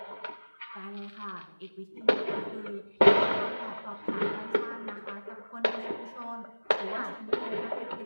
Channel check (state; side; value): inverted; both; correlation -1.00